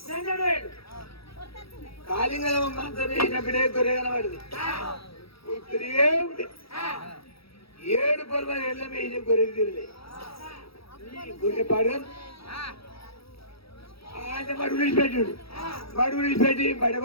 కాలింగల మంత్రం వేసినప్పుడే గొర్రె కనబడింది. 7 పొలమని ఎల్లం వేసిన గొర్రెకి తిరలే గొర్రె పాడు ఆయన మడుగు విడిచిపెట్టి బడ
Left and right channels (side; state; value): right; late; 0.76 ms